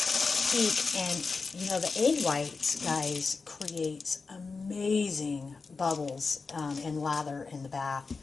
peak. And you know, the egg whites, guys, creates amazing bubbles and lather in the bath.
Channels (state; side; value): quieter; right; 4.4 dB